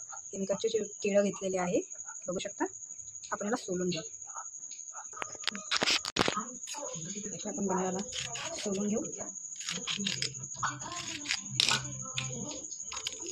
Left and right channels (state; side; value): identical; both; correlation 1.00